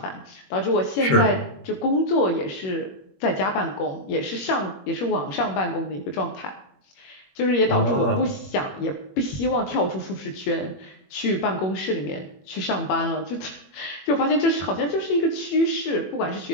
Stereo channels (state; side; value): late; right; 21 ms